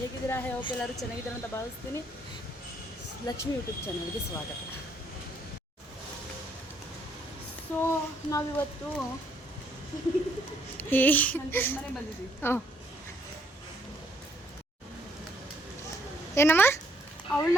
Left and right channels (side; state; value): both; normal; correlation 0.68